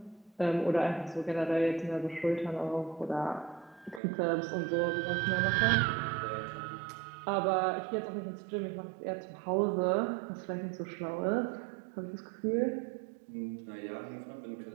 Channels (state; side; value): drops out; left; at 4.0 s